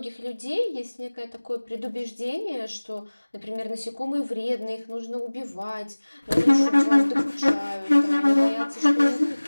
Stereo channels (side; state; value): both; inverted; correlation -1.00